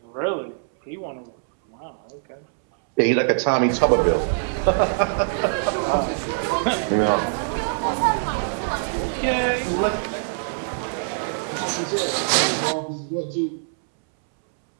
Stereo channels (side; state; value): left; silent; 63 dB below the other